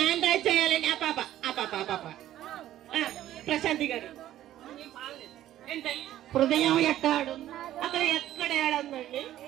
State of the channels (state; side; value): quieter; left; 13.0 dB